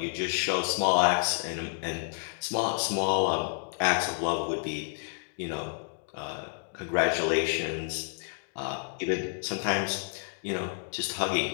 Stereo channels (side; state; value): right; silent; digital silence